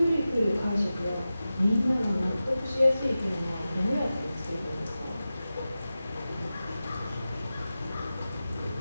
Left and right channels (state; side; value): inverted; both; correlation -0.94